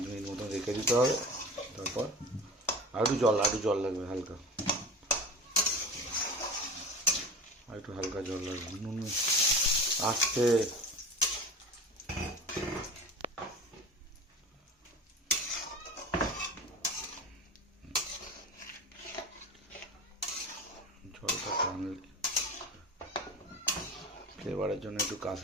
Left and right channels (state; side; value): normal; both; correlation 0.33